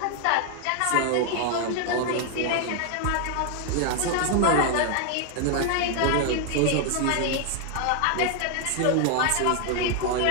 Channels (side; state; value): both; different; correlation 0.00